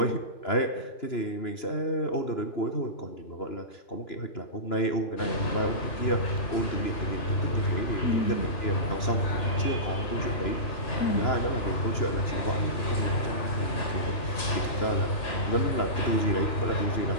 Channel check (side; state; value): right; late; 3.0 ms